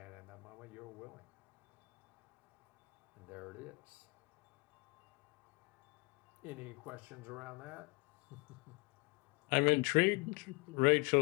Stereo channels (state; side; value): quieter; right; 25.1 dB